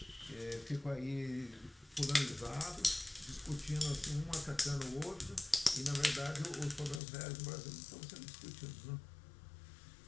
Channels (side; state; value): right; drops out; at 7.0 s